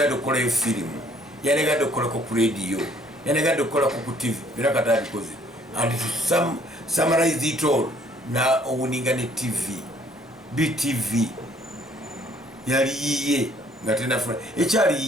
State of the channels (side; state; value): both; normal; correlation 0.61